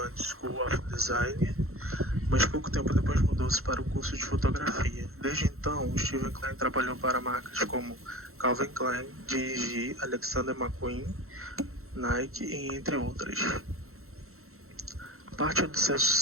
School of Design, mas pouco tempo depois mudou-se para o curso de fotografia. Desde então, Steven Klein trabalhou para marcas como Calvin Klein, G&G, Alexander McQueen, Nike e entre outras. Parte do seu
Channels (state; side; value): late; left; 0.63 ms